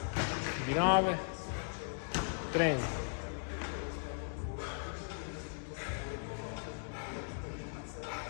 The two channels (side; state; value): right; silent; digital silence